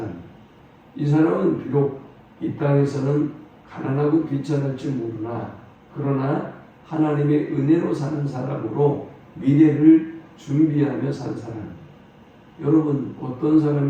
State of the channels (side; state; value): both; identical; correlation 1.00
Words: 이 사람은 비록 이 땅에서는 가난하고 비천할지 모르나 그러나 하나님의 은혜로 사는 사람으로 미래를 준비하며 산 사람이에요. 여러분, 어떤